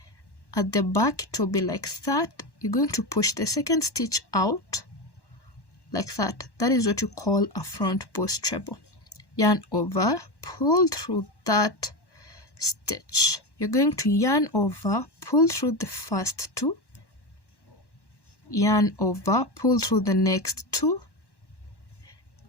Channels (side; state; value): right; late; 1.1 ms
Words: at the back it will be like that. You're going to push the second stitch out like that. That is what you call a front post treble. Yarn over, pull through that stitch. You're going to yarn over, pull through the first 2, yarn over, pull through the next 2,